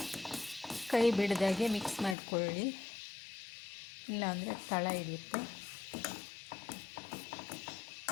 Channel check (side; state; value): right; drops out; at 2.1 s